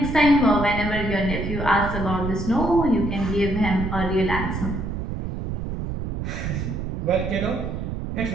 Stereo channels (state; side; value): noise; right; rumble, 4 dB below the sound